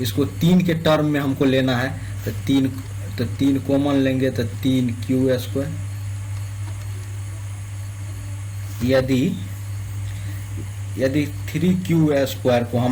इसको 3 के टर्म में हमको लेना है, तो 3 कॉमन लेंगे तो 3q स्क्वायर। यदि 3q स्क्वायर को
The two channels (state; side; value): identical; both; correlation 1.00